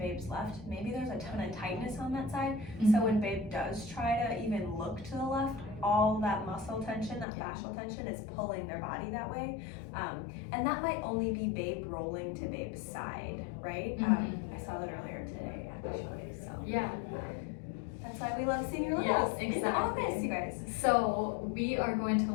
left, maybe there's a ton of tightness on that side. So when babe does try to even look to the left, all that muscle tension, that fascial tension is pulling their body that way. And that might only be babe rolling to babe's side, right? I saw that earlier today, actually. So that's why we love seeing your littles in the office, you guys. So we are going to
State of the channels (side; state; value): right; drops out; at 7.2 s